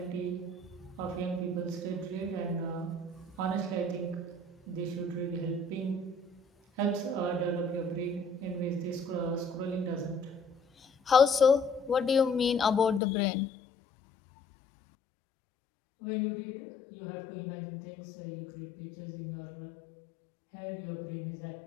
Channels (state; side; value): drops out; right; at 13.0 s